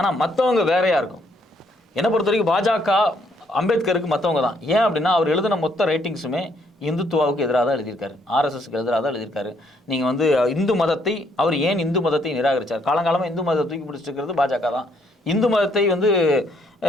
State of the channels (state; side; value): normal; both; correlation 0.69